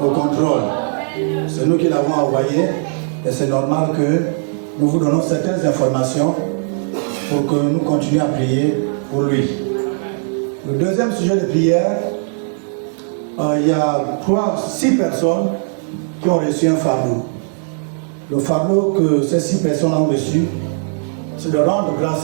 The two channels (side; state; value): left; silent; 67 dB below the other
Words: contrôle. C'est nous qui l'avons envoyé et c'est normal que nous vous donnons certaines informations pour que nous continuions à prier pour lui. Le deuxième sujet de prière, il y a 6 personnes qui ont reçu un fardeau. Le fardeau que ces 6 personnes ont reçu, c'est de rendre grâce